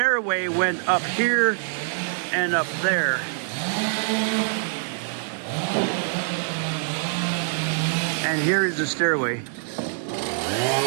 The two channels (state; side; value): silent; left; 60 dB below the other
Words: went up here and up there. And here is the stairway.